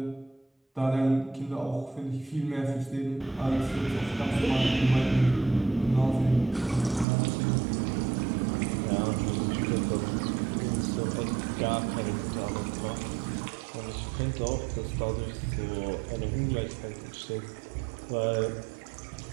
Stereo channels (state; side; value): drops out; left; at 7.1 s